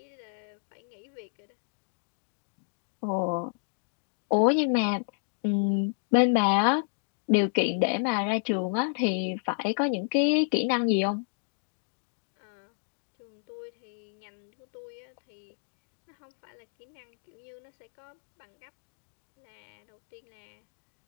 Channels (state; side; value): silent; right; digital silence